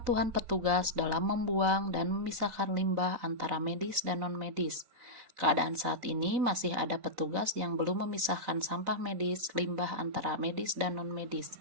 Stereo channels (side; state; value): left; late; 4.0 ms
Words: petugas dalam membuang dan memisahkan limbah antara medis dan non-medis. Keadaan saat ini masih ada petugas yang belum memisahkan sampah medis, limbah antara medis dan non-medis.